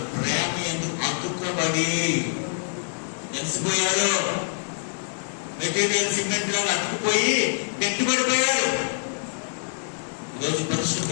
ప్రేమ ఎందుకు అతుక్కబడి తెలిసిపోయారు. మెటీరియల్ సిమెంట్ లాగా అతుక్కుపోయి గట్టిపడిపోయారు. ఈరోజు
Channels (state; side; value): silent; right; 59 dB below the other